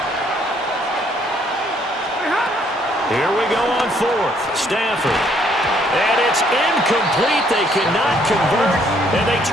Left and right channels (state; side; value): normal; both; correlation 0.66